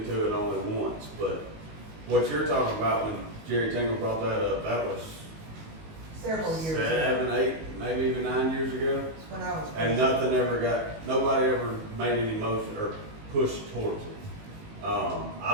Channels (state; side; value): late; left; 19 ms